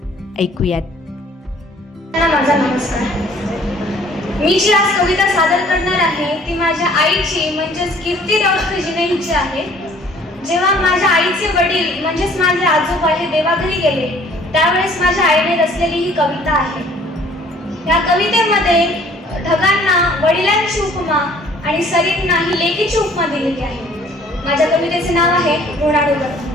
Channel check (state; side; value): normal; both; correlation 0.56